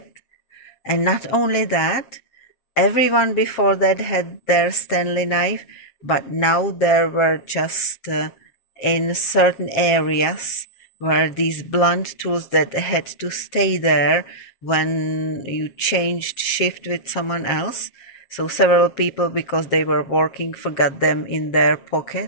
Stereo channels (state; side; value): late; right; 7.4 ms